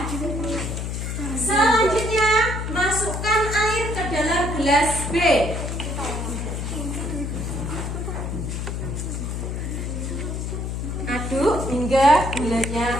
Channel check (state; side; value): noise; left; hum, 3 dB below the sound